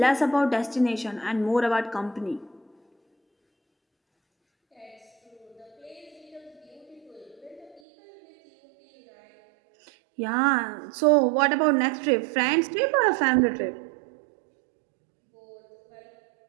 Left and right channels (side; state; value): left; drops out; at 7.8 s